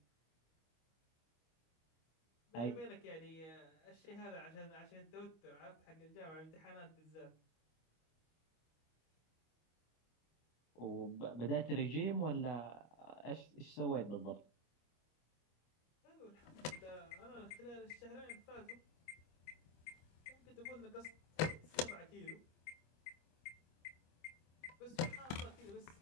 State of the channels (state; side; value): late; right; 25 ms